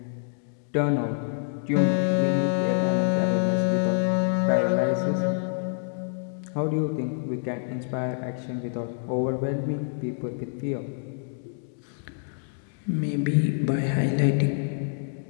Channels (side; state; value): right; silent; digital silence